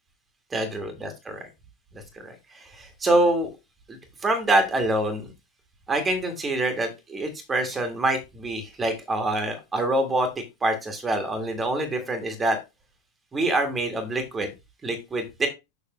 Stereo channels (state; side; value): normal; both; correlation 0.66